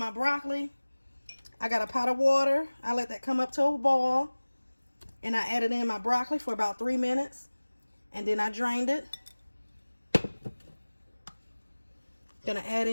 broccoli, I got a pot of water. I let that come up to a boil. And I added in my broccoli for about 3 minutes. And then I drained it. Gonna add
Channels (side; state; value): both; inverted; correlation -1.00